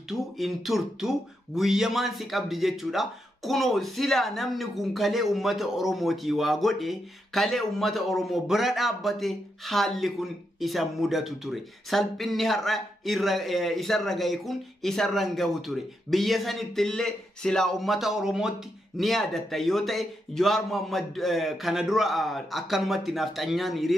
in turtu guyyamaan si qabdi jechuudha. Kunoo sila namni kun kalee ummata Oromooti waa godhe kalee ummata Oromoo bira dhaabbate haalli kun isa mudatu ture. Salphinni har'a isarra gahe kun isarra gahu ture. Biyya sanittillee sila ummata Oromootti ni yaadatta yoo ta'e Jawaar Mohammad kana dura akkanumatti nafxanyaan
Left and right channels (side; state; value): both; normal; correlation 0.83